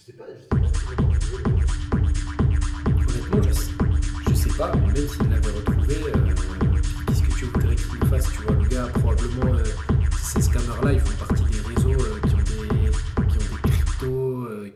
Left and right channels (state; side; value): identical; both; correlation 1.00